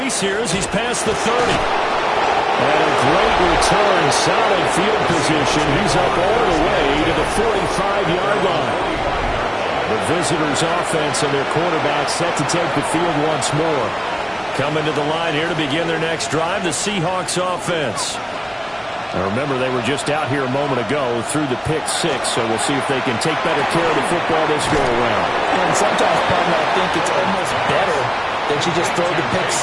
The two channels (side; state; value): both; identical; correlation 1.00